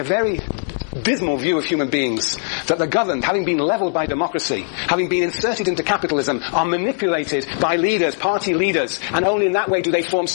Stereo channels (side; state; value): right; silent; digital silence